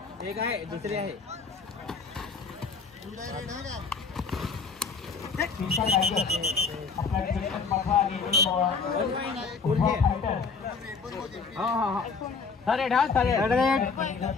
एक आहे दुसरी आहे आपला थर्ड हा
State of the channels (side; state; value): right; quieter; 5.0 dB